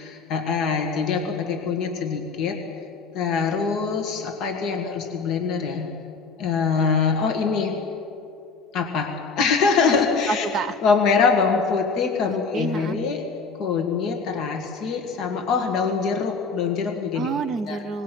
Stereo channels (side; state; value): right; quieter; 4.5 dB